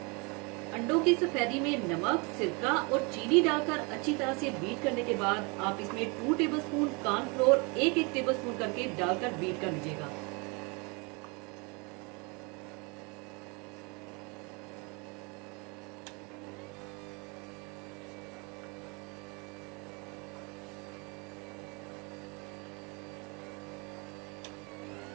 अंडों की सफेदी में नमक, सिरका और चीनी डालकर अच्छी तरह से बीट करने के बाद आप इसमें 2 टेबल स्पून कॉर्नफ्लोर एक एक टेबल स्पून करके डालकर बीट कर लीजिएगा।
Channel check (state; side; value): quieter; left; 30.2 dB